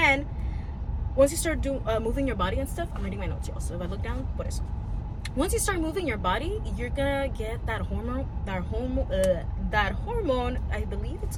once you start moving your body and stuff, I'm reading my notes, y'all. So if I look down, por eso. Once you start moving your body, you're gonna get that hormone, I believe it's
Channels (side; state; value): both; identical; correlation 1.00